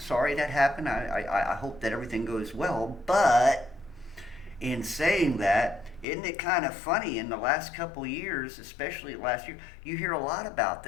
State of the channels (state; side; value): drops out; right; at 6.1 s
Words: that happened. I hope that everything goes well. But in saying that, isn't it kind of funny in the last couple of years, especially last year, you hear a lot about